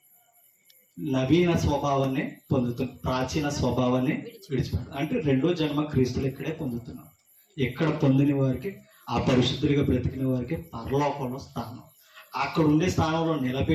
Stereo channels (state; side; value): identical; both; correlation 1.00